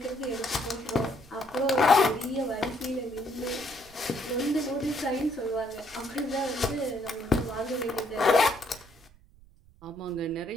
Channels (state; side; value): noise; right; rumble, 24 dB below the sound